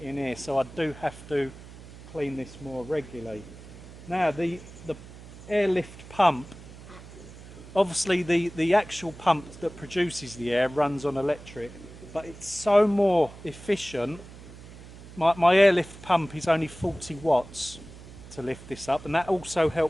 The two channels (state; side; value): noise; right; hum, 17 dB below the sound